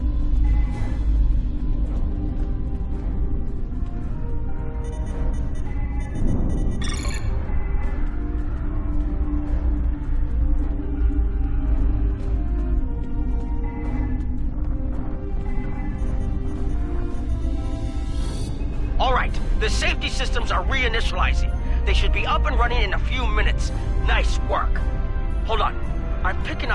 The safety systems are reinitializing. They should be up and running in a few minutes. Nice work. Hold on. I'm picking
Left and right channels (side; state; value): both; identical; correlation 1.00